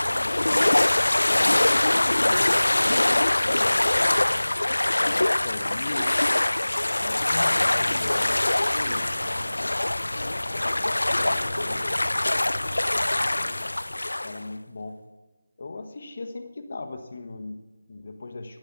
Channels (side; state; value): both; inverted; correlation -1.00